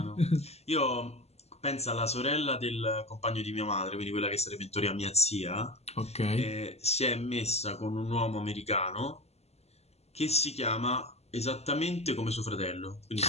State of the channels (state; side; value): late; right; 0.30 ms